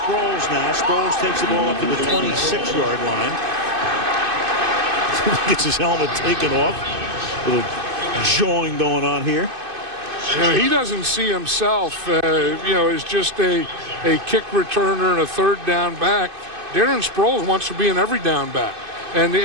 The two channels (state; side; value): late; left; 2.5 ms